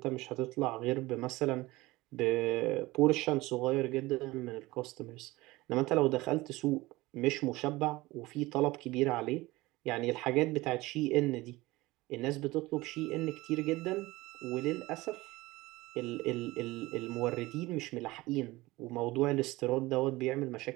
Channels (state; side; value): quieter; left; 20.0 dB